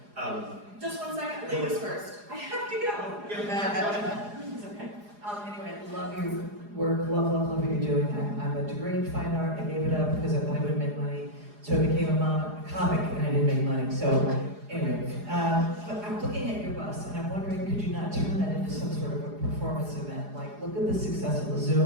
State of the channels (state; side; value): late; left; 4.8 ms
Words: just 1 second. Ladies first. I have to go. It's okay. Anyway, I love your work, love what you're doing. I'm a degree in fine art. I gave it up because I thought I wouldn't make money. So I became a comic and I didn't make money. So anyway, but I'm looking at your bus and I'm wondering, could you not turn that into some sort of a performance event? Like, look at the success of the